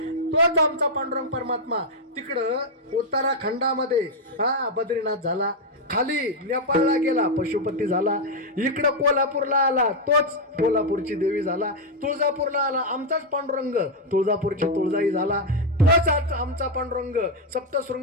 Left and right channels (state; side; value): normal; both; correlation 0.00